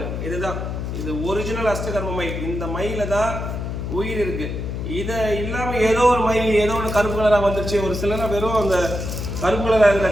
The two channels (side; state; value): left; noise; hum, 4 dB below the sound